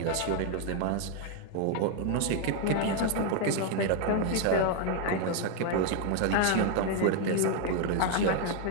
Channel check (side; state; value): both; different; correlation 0.01